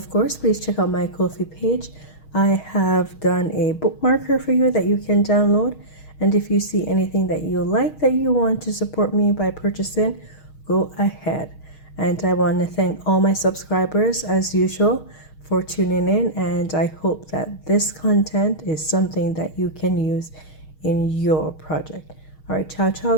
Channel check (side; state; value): right; late; 6.4 ms